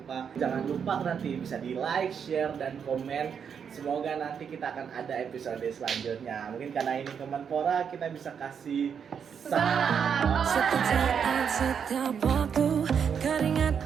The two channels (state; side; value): quieter; left; 7.2 dB